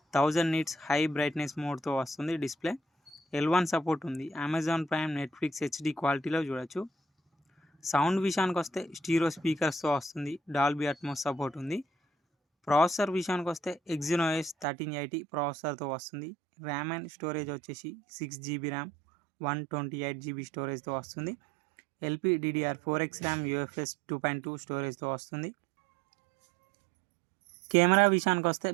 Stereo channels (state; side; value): drops out; left; at 14.7 s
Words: 1000 nits హై బ్రైట్నెస్ మోడ్తో వస్తుంది. డిస్ప్లే L1 సపోర్ట్ ఉంది. అమెజాన్ ప్రైమ్, నెట్ఫ్లిక్స్ హెచ్డి క్వాలిటీలో చూడొచ్చు. సౌండ్ విషయానికి వస్తే స్టీరియో స్పీకర్స్తో వస్తుంది. డాల్బీ అట్మోస్ సపోర్ట్ ఉంది. ప్రాసెసర్ విషయానికి వస్తే Exynos 1380 ప్రాసెసర్తో వస్తుంది. ర్యామ్ అండ్ స్టోరేజ్ వచ్చేసి 6GB ర్యామ్, 128GB స్టోరేజ్తో వస్తుంది. LPDDR4X ర్యామ్, UFS 2.2 స్టోరేజ్తో వస్తుంది. కెమెరా విషయానికి వస్తే